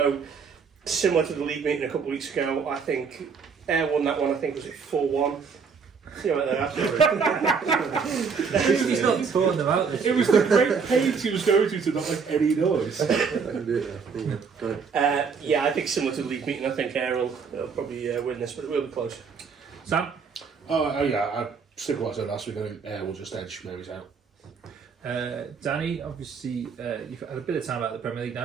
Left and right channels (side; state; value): left; quieter; 5.7 dB